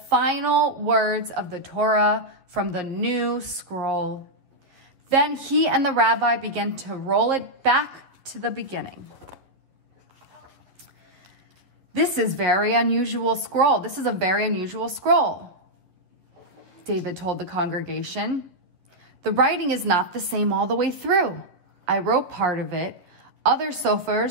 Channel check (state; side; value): late; left; 11 ms